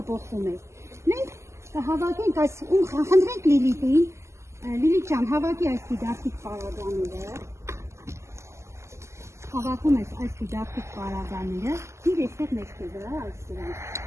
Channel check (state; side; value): late; left; 0.13 ms